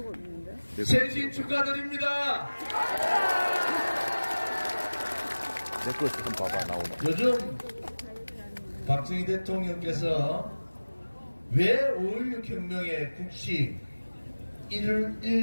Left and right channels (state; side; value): inverted; both; correlation -1.00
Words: 있는데. 생신 축하드립니다. 내 거 지금 봐봐 나오네. 요즘 박정희 대통령께서 왜 5.16 혁명의 국시